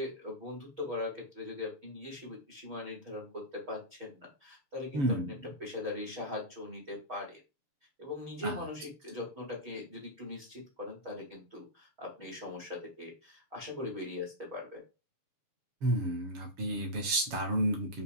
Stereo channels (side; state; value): left; late; 7.1 ms